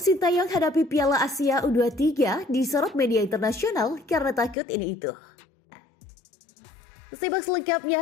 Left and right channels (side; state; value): right; drops out; at 4.5 s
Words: Sintayong hadapi Piala Asia U23 disorot media internasional karena takut ini itu. Simak